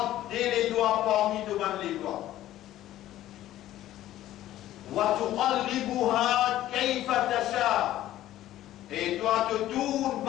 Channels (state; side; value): quieter; right; 13.8 dB